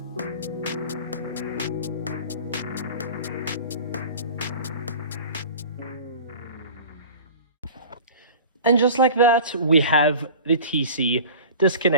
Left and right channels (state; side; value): inverted; both; correlation -0.39